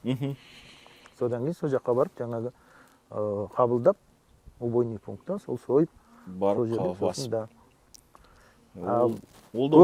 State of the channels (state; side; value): identical; both; correlation 1.00